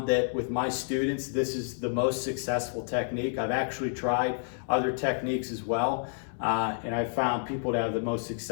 that with my students, this is the most successful technique. I've actually tried other techniques as well. And I've found people to have the most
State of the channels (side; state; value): right; silent; 58 dB below the other